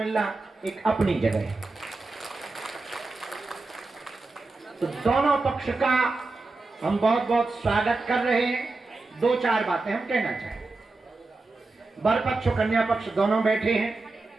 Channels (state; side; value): quieter; left; 3.4 dB